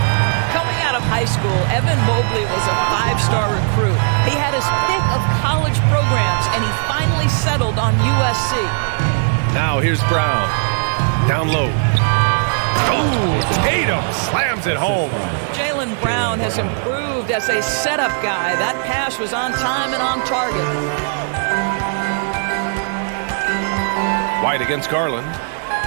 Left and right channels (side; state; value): left; silent; digital silence